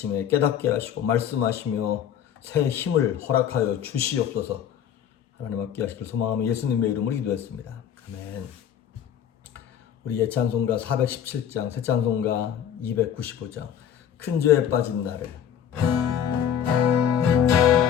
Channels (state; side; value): quieter; right; 9.2 dB